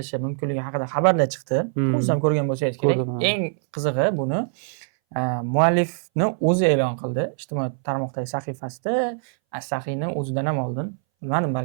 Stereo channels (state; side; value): silent; left; 61 dB below the other